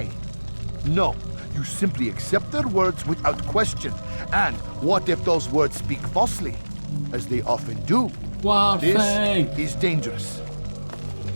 No, you simply accept their words without question. And what if those words speak falsely? As they often do. This is dangerous.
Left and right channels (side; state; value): both; inverted; correlation -1.00